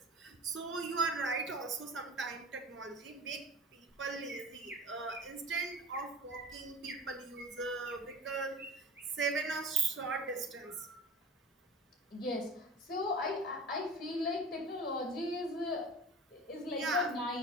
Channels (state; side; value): normal; both; correlation 0.36